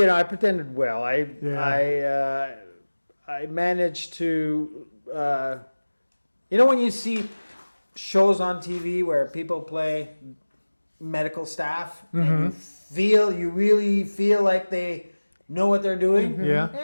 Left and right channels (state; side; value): inverted; both; correlation -1.00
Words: pretended well. Yeah. I managed to. When you see shows on TV where people play medical staff and you really feel like they know what they're doing. Yeah.